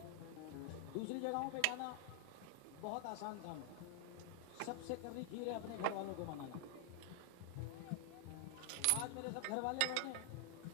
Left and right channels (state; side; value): different; both; correlation 0.00